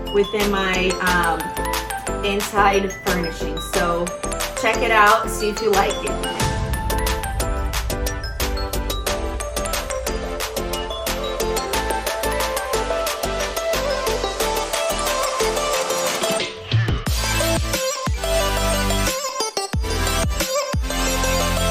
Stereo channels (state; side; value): identical; both; correlation 1.00